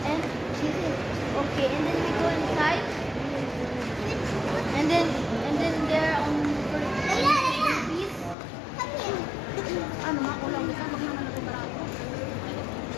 She said, okay. And then we go inside. And then there on peace. Ano, makulang kita, wag naman ito barako.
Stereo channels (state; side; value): drops out; right; at 8.3 s